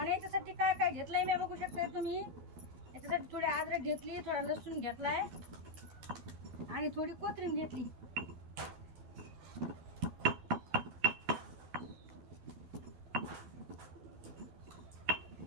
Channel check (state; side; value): late; left; 12 ms